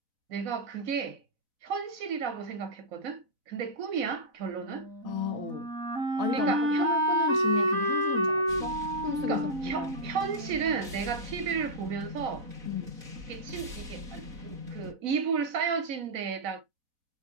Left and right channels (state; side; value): late; left; 4.0 ms